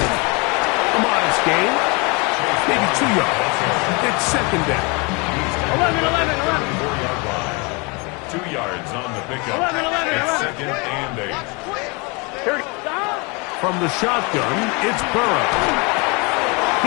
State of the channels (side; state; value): right; quieter; 29.5 dB